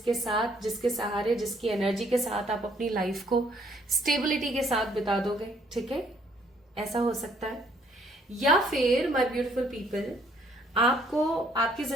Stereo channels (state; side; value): normal; both; correlation 0.65